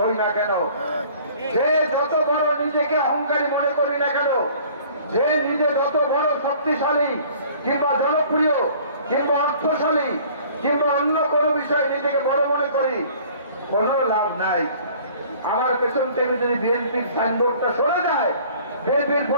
হই না কেন, যে যত বড় নিজেকে অহংকারী মনে করি না কেন, যে নিজে যত বড় শক্তিশালী কিংবা জনপ্রিয় কিংবা অর্থশালী কিংবা অন্য কোনো বিষয়ে নিজেকে বড় মনে করি, কোনো লাভ নাই। আমার পেছন থেকে যদি বিএনপির সাইনবোর্ডটা সরে যায়, বিএনপির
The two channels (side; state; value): both; inverted; correlation -0.51